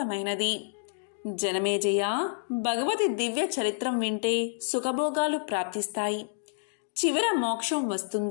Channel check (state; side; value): silent; right; digital silence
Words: జనమేజయ, భగవతి దివ్య చరిత్రం వింటే సుఖభోగాలు ప్రాప్తిస్తాయి. చివర మోక్షం